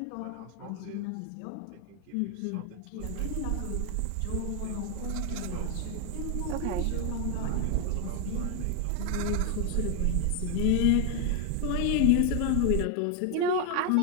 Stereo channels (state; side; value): different; both; correlation 0.01